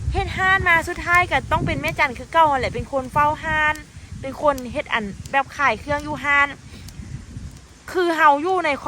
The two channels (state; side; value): identical; both; correlation 1.00